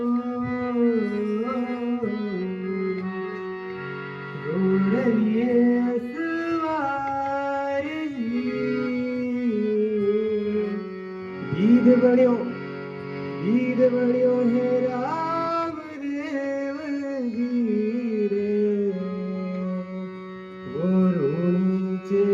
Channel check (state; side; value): identical; both; correlation 1.00